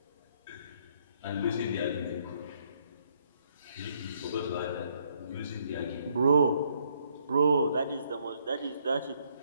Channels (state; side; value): inverted; both; correlation -0.70